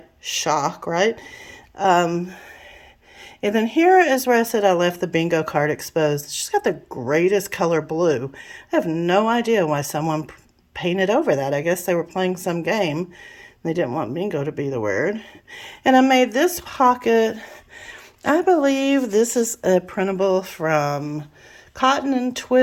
Shock, right? And then here is where I said I left the bingo card exposed. She's got the greatest color blue. I have no idea why someone painted over that. I guess they were playing some game. They didn't want bingo to be the word. And I made this pocket. I believe this is a printable from Cotton and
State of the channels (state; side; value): identical; both; correlation 1.00